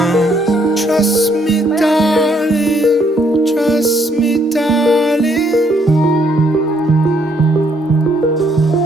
Trust me, darling, trust me, darling.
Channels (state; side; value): normal; both; correlation 0.69